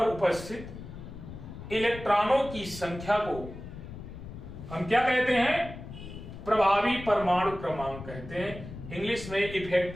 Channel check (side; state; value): left; noise; rumble, 12 dB below the sound